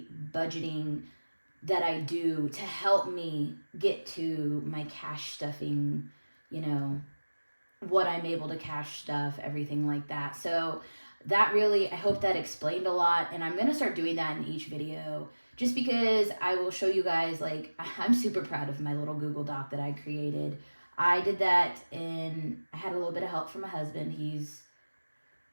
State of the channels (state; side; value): inverted; both; correlation -1.00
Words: budgeting that I do to help me get to my cash stuffing, what I'm able to cash stuff, everything like that. So that really, I hope that explained a lot. And I'm going to start doing that in each video just because I will show you guys, like, I'm super proud of my little Google Doc that I created. I did that and I had a little bit of help from my husband.